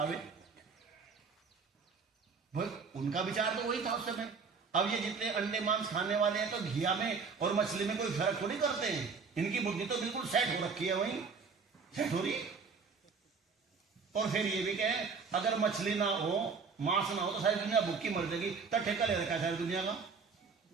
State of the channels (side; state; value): left; quieter; 5.2 dB